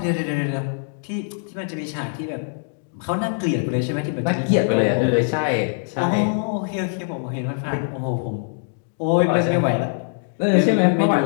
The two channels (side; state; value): right; silent; digital silence